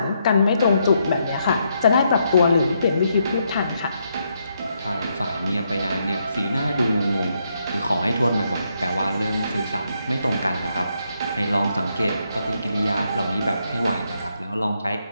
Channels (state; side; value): inverted; both; correlation -0.77